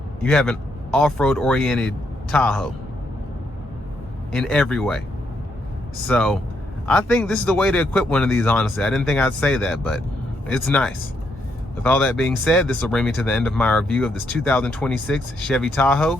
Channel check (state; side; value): normal; both; correlation 0.76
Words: you have an off-road oriented Tahoe in every way. So I think this is the way to equip one of these, honestly. I didn't think I'd say that, but it's nice. With all that being said, this will bring me to the end of my review of this 2026 Chevy Tahoe